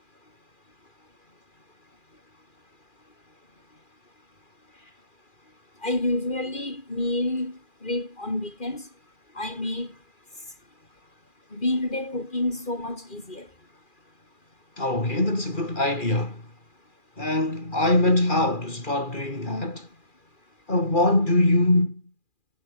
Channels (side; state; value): right; late; 2.4 ms